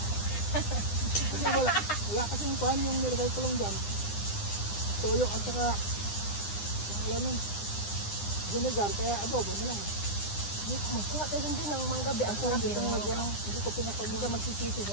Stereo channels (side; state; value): right; late; 9.9 ms